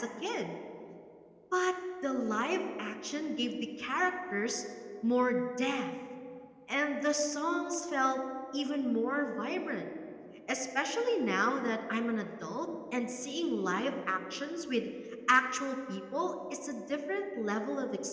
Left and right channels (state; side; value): identical; both; correlation 1.00